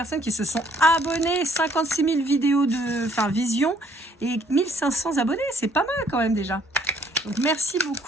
qui se sont abonnées. 56 000 vidéos de vision et 1500 abonnés, c'est pas mal quand même déjà. Donc merci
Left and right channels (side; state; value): both; normal; correlation 0.63